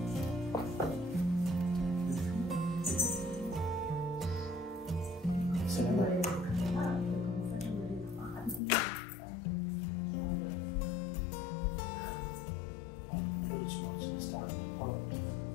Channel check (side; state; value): right; drops out; at 8.6 s